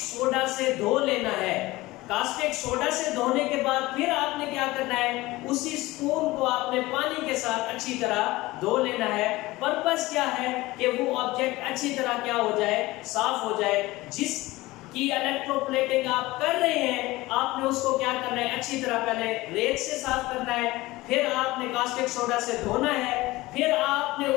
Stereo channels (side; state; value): right; quieter; 19.5 dB